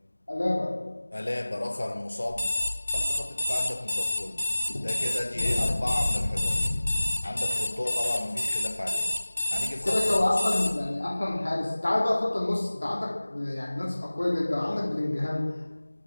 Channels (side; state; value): both; inverted; correlation -1.00